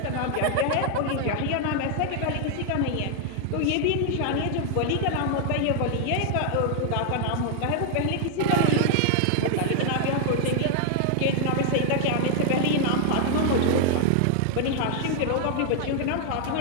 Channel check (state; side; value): different; both; correlation -0.01